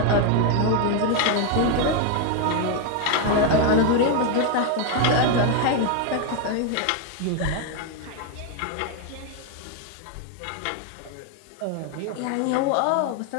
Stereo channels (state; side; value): different; both; correlation 0.01